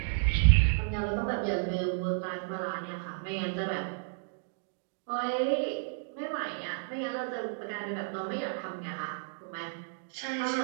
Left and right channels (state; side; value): silent; left; digital silence